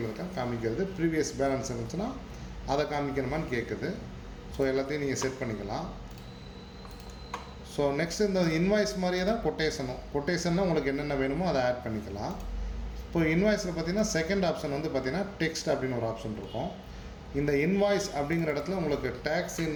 இருக்க காமிக்கிறது. ப்ரீவியஸ் பேலன்ஸ் இருந்துச்சுன்னா அதை காமிக்கணுமான்னு கேட்குது. எல்லாத்தையும் நீங்கள் செட் பண்ணிக்கலாம். நெக்ஸ்ட் இந்த இன்வாய்ஸ் மாதிரியே தான் கொட்டேஷன்னா உங்களுக்கு என்னென்ன வேணுமோ அதை ஆட் பண்ணிக்கலாம். இப்போ இன்வாய்ஸில் பார்த்தீங்கன்னா செகண்ட் ஆப்ஷன் வந்து பார்த்தீங்கன்னா டெக்ஸ்ட் அப்படின்னு ஒரு ஆப்ஷன் இருக்கும். இந்த இன்வாய்ஸ் அப்படிங்கிற இடத்துல உங்களுக்கு டேக்ஸ்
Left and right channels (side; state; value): both; identical; correlation 1.00